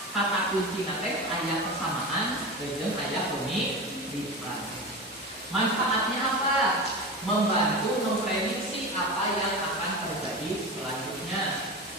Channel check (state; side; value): normal; both; correlation 0.26